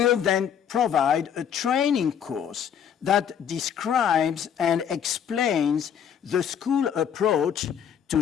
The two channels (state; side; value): quieter; right; 8.4 dB